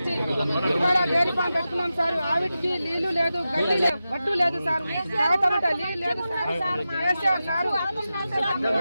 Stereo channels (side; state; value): both; inverted; correlation -0.92